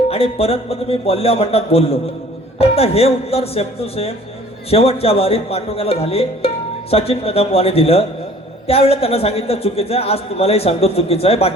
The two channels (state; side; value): normal; both; correlation 0.51